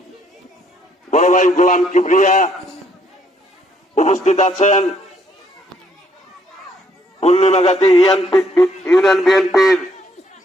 বড় ভাই গোলাম কিবরিয়া, উপস্থিত আছেন পূর্ণিমাগাতি ইউনিয়ন বিএনপির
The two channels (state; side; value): normal; both; correlation 0.68